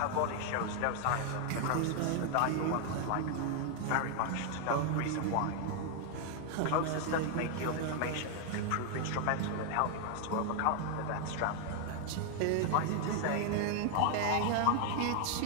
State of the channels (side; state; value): both; different; correlation 0.00